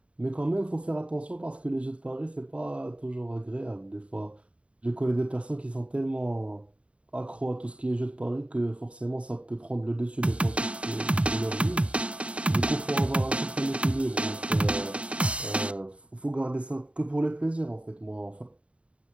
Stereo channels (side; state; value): left; late; 0.062 ms